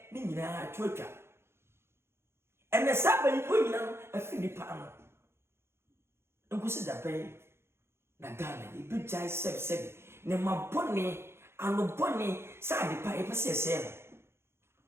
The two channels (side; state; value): left; late; 0.12 ms